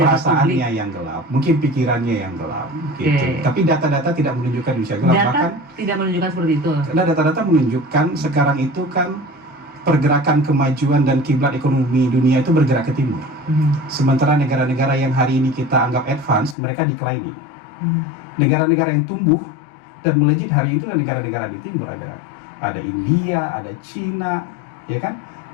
perasaannya publik yang gelap, mungkin pikirannya yang gelap, gitu. Tapi data-data tidak menunjukkan Indonesia gelap. Data Bahkan tidak menunjukkan seperti itu. Karena data-data menunjukkan sekarang itu kan pergerakan kemajuan dan kiblat ekonomi dunia itu bergerak ke timur. Sementara negara-negara yang hari ini kita anggap advance, mereka declining. Negara-negara yang tumbuh dan melejit hari itu negara-negara di timur, ada India, ada Cina, ya kan,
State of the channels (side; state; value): right; drops out; at 16.6 s